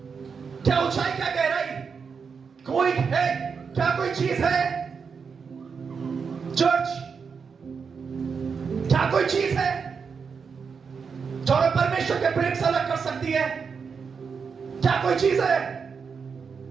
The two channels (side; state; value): left; quieter; 5.8 dB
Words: क्या ऊंचाई, क्या गहराई, कोई है क्या? कोई चीज है चर्च? क्या कोई चीज है जो हमें परमेश्वर के प्रेम से अलग कर सकती है? क्या कोई चीज है?